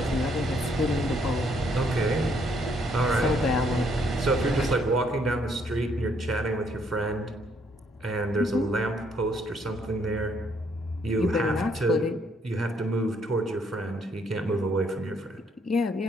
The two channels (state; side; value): normal; both; correlation 0.69